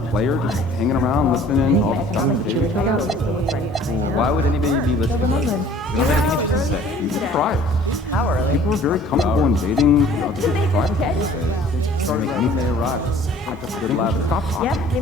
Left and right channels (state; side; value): normal; both; correlation 0.51